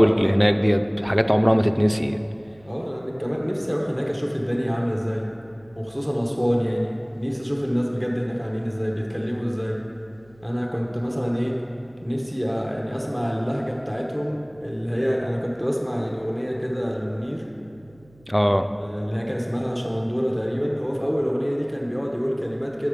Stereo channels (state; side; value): noise; right; hum, 28 dB below the sound